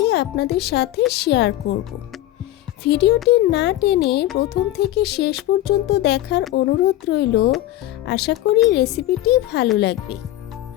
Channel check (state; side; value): quieter; right; 14.7 dB